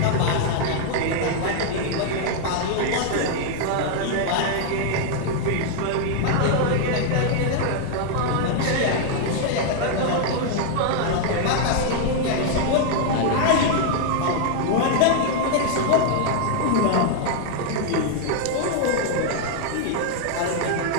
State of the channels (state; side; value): different; both; correlation 0.00